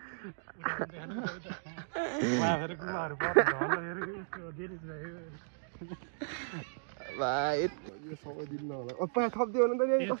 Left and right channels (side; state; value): left; silent; digital silence